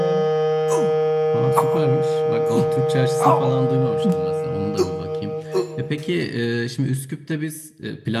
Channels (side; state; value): both; identical; correlation 1.00